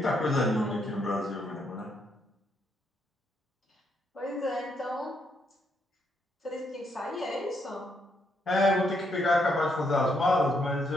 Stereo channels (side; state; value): both; normal; correlation 0.76